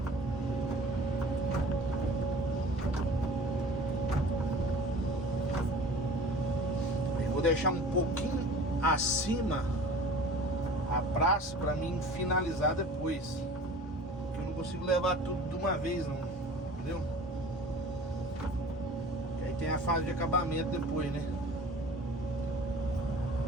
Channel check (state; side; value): normal; both; correlation 0.42